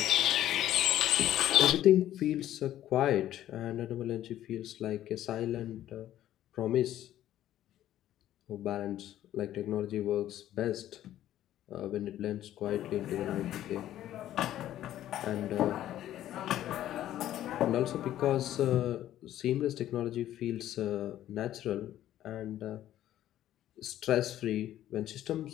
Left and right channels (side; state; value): right; quieter; 12.6 dB